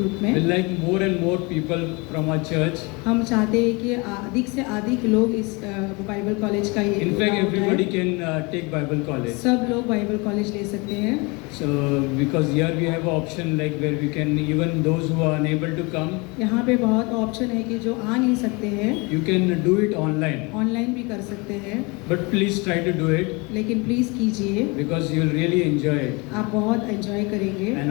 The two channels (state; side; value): quieter; right; 27.8 dB